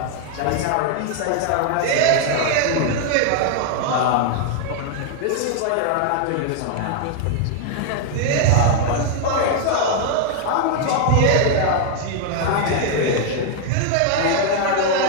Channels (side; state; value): both; different; correlation 0.00